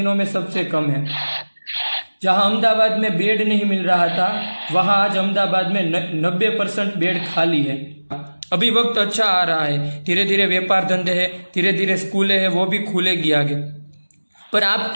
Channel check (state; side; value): inverted; both; correlation -1.00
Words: में सबसे कम है। जहां अहमदाबाद में बेड नहीं मिल रहा था, वहां आज अहमदाबाद में 90% बेड खाली है। अभी वक्त अच्छा आ रहा है, धीरे धीरे व्यापार धंधे है, धीरे धीरे स्कूलें हैं, वो भी खुलेगी आगे। पर आप